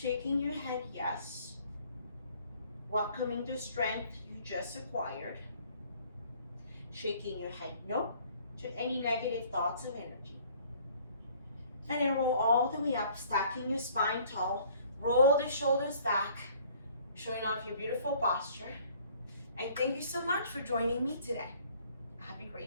your head, yes. Welcoming the strength you just acquired. Shaking your head, no, to any negative thoughts of energy. And then roll all the way up, stacking your spine tall. Roll the shoulders back, showing off your beautiful posture. And thank you so much for joining me today. Have a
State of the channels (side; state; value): both; inverted; correlation -0.56